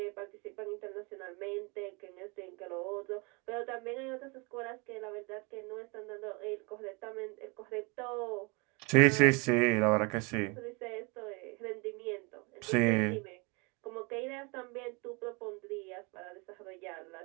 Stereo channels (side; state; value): left; quieter; 29.9 dB